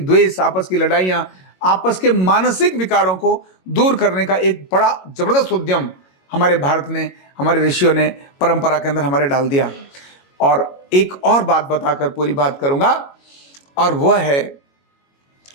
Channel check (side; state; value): right; late; 22 ms